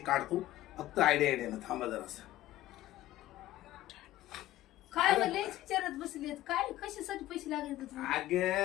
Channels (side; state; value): right; quieter; 15.0 dB